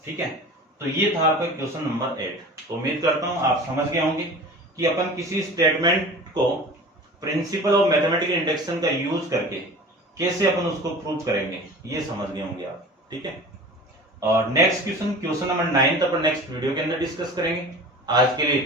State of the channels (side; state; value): both; normal; correlation 0.38